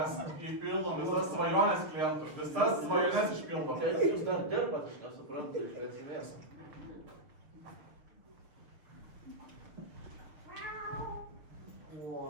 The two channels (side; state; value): left; late; 6.7 ms